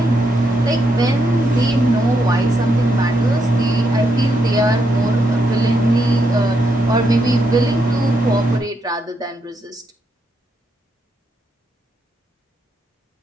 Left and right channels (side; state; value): both; normal; correlation 0.79